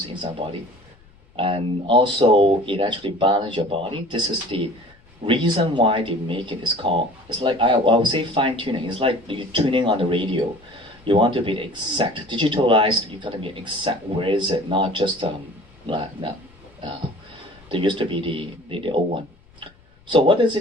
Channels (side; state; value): left; noise; rumble, 29 dB below the sound